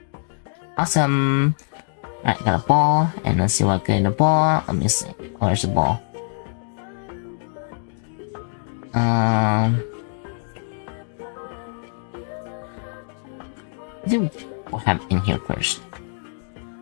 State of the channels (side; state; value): right; silent; digital silence